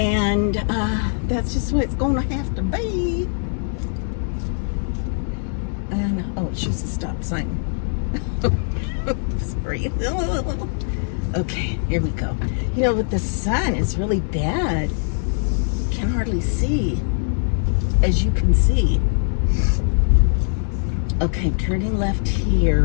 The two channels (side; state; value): right; silent; 57 dB below the other